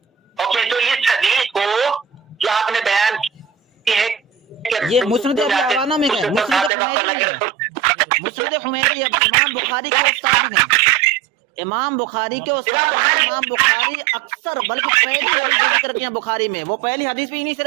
اوکے، تو اس حدیث کو جو آپ نے بیان کی ہے یہ مسند ابی عوانہ میں ہے، مسند حمیدی ہے، امام بخاری کے استاد ہیں، امام بخاری کے استاد ہیں. امام بخاری اکثر بلکہ پہلی حدیث جو ذکر کیا بخاری میں وہ پہلی حدیث بھی انہی سے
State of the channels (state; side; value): drops out; left; at 6.7 s